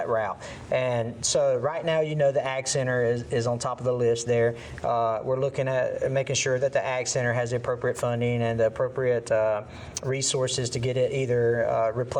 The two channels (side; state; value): both; identical; correlation 1.00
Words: route. And so right now, you know, the Ag Center is on top of the list there. We're looking at making sure that the Ag Center has the appropriate funding and the appropriate resources to get it either